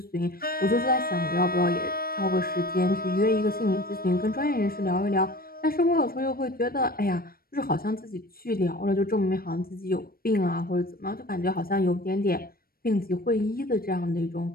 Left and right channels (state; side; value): late; right; 0.43 ms